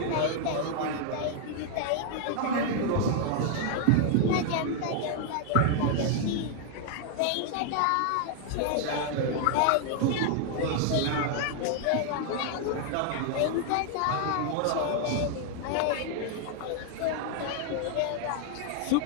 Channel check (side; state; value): both; different; correlation 0.00